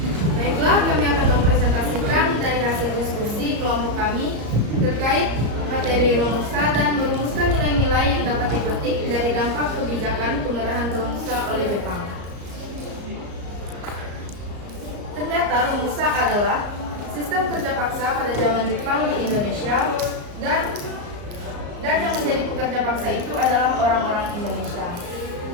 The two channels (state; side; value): late; left; 34 ms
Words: Baiklah, kami akan mempresentasikan dari hasil diskusi kelompok kami terkait materi Romusa dan merumuskan nilai-nilai yang dapat dipetik dari dampak kebijakan pengerahan Romusa oleh Jepang. Ternyata Romusa adalah sistem kerja paksa pada zaman Jepang di Indonesia dan yang menjadi pekerja paksa itu adalah orang-orang Indonesia.